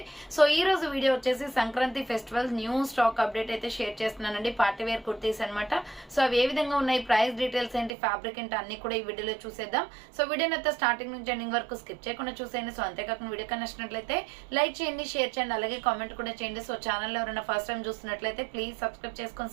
సో ఈ రోజు వీడియో వచ్చేసి Sankranti festival new stock update అయితే షేర్ చేస్తున్నానండి. పార్టీ వేర్ కుర్తీస్ అనమాట. సో అవి ఏ విధంగా ఉన్నాయి, ప్రైస్ డీటెయిల్స్ ఏంటి, ఫ్యాబ్రిక్ ఏంటి అన్ని కూడా ఈ వీడియోలో చూసేద్దాం. సో వీడియోని అయితే స్టార్టింగ్ నుంచి ఎండింగ్ వరకు స్కిప్ చేయకుండా చూసేయండి. సో అంతేకాకుండా వీడియో నచ్చినట్లయితే లైక్ చేయండి, షేర్ చేయండి, అలాగే కామెంట్ కూడా చేయండి. సో ఛానల్ ఎవరైనా ఫస్ట్ టైం చూస్తున్నట్లయితే ప్లీజ్ సబ్స్క్రైబ్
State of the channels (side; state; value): left; drops out; at 8.0 s